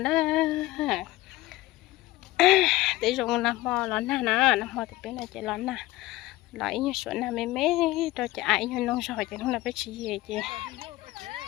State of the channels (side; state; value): right; quieter; 18.0 dB